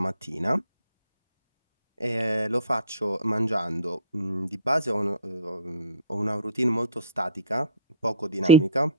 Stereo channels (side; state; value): both; inverted; correlation -0.43